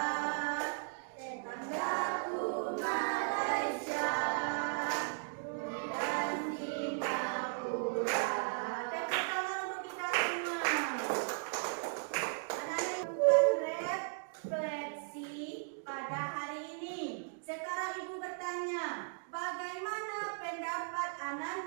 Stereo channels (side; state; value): left; silent; digital silence